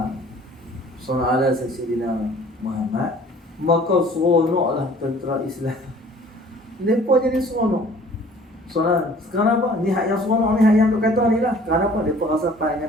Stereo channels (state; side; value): normal; both; correlation 0.52